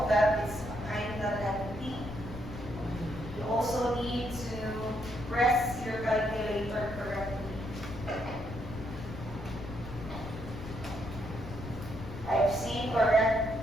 that it's kind of lengthy. You also need to press your calculator correctly. I've seen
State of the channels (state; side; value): noise; left; rumble, 11 dB below the sound